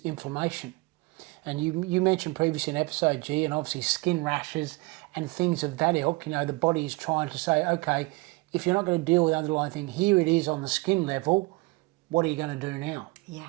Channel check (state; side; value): quieter; left; 24.7 dB